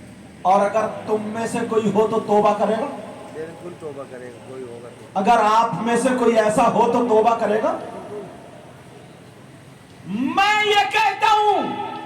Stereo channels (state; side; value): identical; both; correlation 1.00